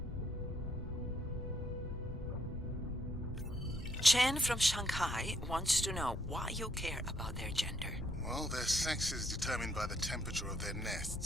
Chen from Shanghai wants to know why you care about their gender. Well, their sex is determined by the temperature of their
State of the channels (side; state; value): both; normal; correlation 0.72